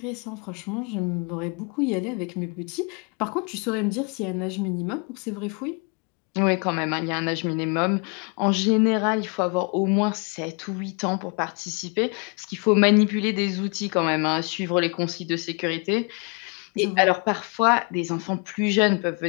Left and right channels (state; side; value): quieter; right; 34.3 dB